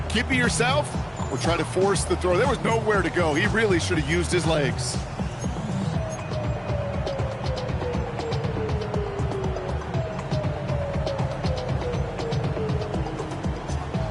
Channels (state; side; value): identical; both; correlation 1.00